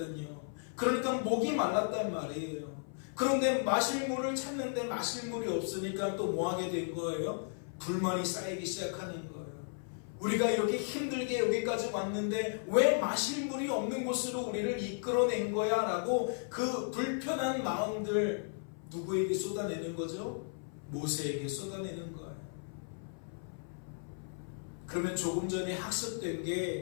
그러니까 목이 말랐단 말이에요. 그런데 마실 물을 찾는데 마실 물이 없으니까 또 뭐 하게 된 거예요? 불만이 쌓이기 시작하는 거예요. 우리가 이렇게 힘들게 여기까지 왔는데 왜 마실 물이 없는 곳으로 우리를 이끌어낸 거야? 라고 그 불편한 마음들 누구에게 쏟아내는 거죠? 모세에게 쏟아내는 거예요. 그러면 조금 전에 학습된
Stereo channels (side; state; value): right; silent; 54 dB below the other